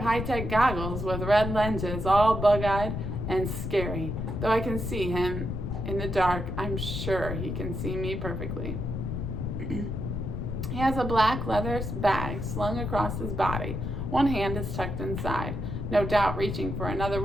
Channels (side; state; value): left; noise; rumble, 3 dB below the sound